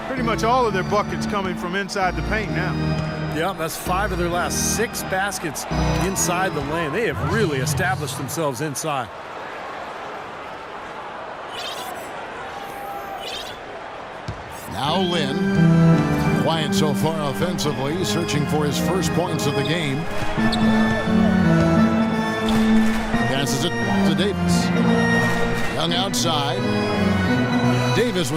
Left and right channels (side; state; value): both; identical; correlation 1.00